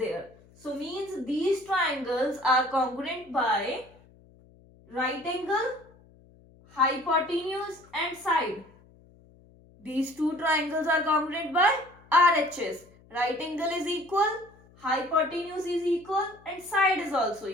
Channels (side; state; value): left; noise; hum, 27 dB below the sound